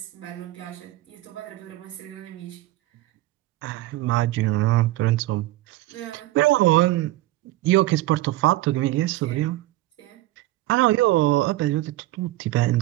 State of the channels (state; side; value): quieter; left; 17.1 dB